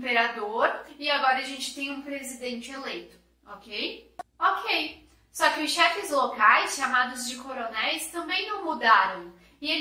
e agora a gente tem um presidente eleito, ok? Ok. Só que os chefes locais, chamados de coronéis, também não mudaram. E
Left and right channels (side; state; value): both; identical; correlation 1.00